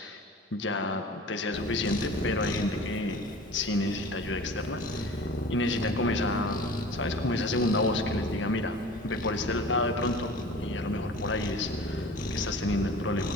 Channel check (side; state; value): both; normal; correlation 0.41